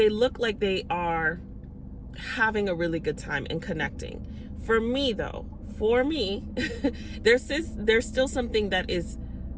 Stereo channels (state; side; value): identical; both; correlation 1.00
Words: look like they are having a really good time and connecting. For me, there's still something that is